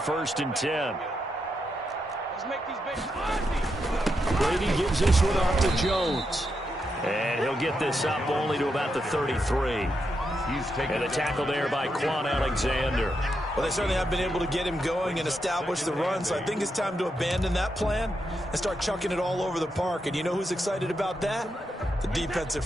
and 10. Let's make these babies Brady gives this one off to Jones. And he'll get this up only to about the 33. And a tackle there by Quan Alexander. Well, they certainly have been able to get him going and establish the run, so I think it's time to abandon that plan and start chucking it all over the park. And you know who's excited about that? The defensive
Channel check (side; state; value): both; normal; correlation 0.84